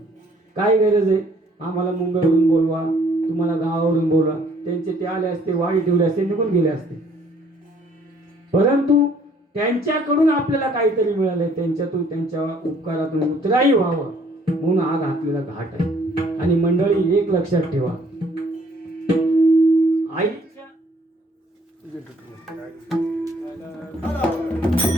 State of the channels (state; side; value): normal; both; correlation 0.61